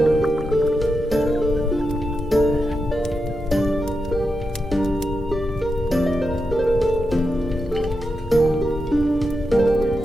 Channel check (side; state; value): both; normal; correlation 0.87